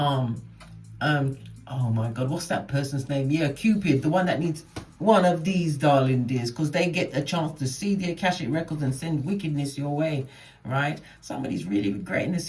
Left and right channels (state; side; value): identical; both; correlation 1.00